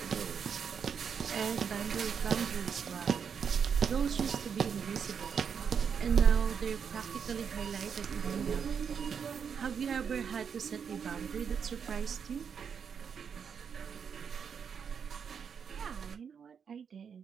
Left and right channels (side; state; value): left; quieter; 6.9 dB